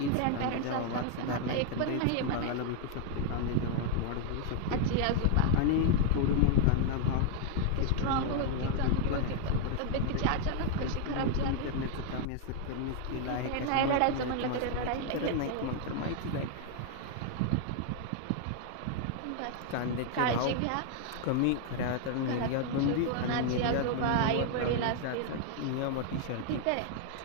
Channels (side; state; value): both; different; correlation 0.00